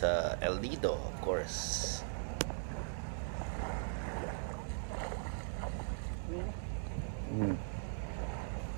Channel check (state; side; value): silent; left; digital silence